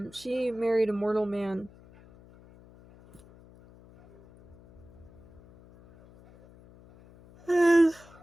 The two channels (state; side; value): noise; left; hum, 24 dB below the sound